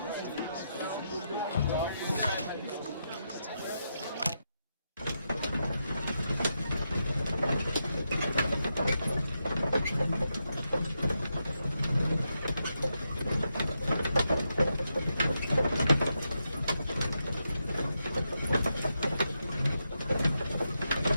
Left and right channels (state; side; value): inverted; both; correlation -0.85